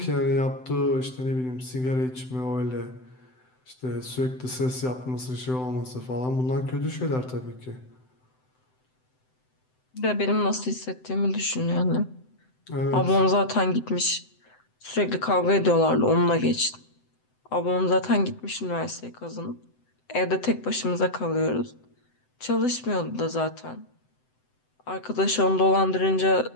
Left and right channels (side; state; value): right; late; 7.8 ms